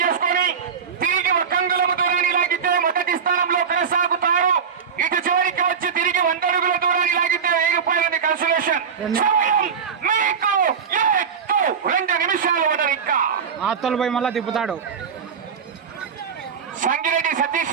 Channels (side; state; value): left; quieter; 6.7 dB